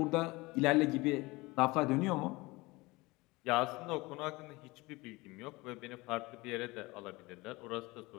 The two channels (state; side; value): quieter; right; 22.6 dB